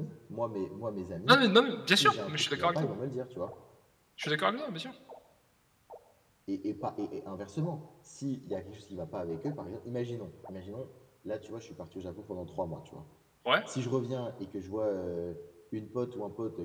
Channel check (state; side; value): identical; both; correlation 1.00